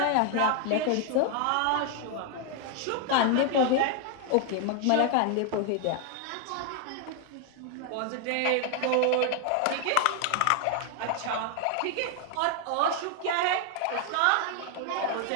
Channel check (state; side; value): different; both; correlation 0.00